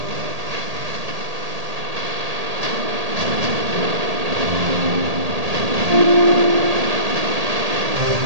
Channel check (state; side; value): late; left; 1.8 ms